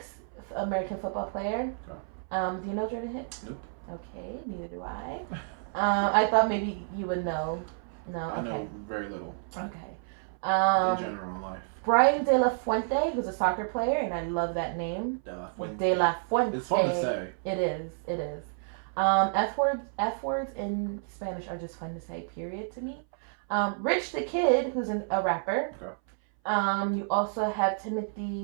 American football player. Okay. Do you know Jordan Hicks? Nope. Okay, neither do I. I thought maybe you would know. No, okay. I know very little. Okay. In general in life. Brian De La Fuente, who's a soccer player, and I love that name. De La Fuente. De La Fuente. It's fun to say. It is. F words in Spanish are just fun to say, period, to me. Rich the Kid, who's a rapper. Okay. You also have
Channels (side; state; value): left; silent; 58 dB below the other